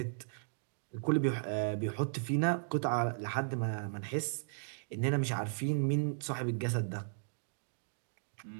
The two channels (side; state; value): left; silent; digital silence